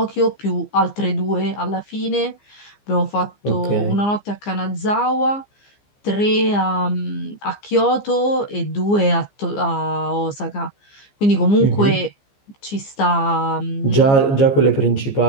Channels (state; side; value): late; right; 15 ms